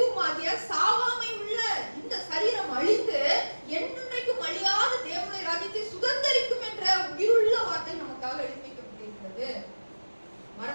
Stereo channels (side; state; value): both; inverted; correlation -1.00